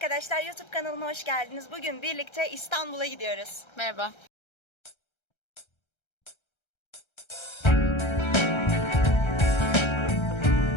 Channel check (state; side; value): late; right; 1.3 ms